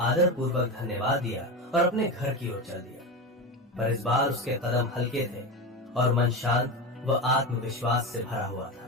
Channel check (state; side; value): normal; both; correlation 0.20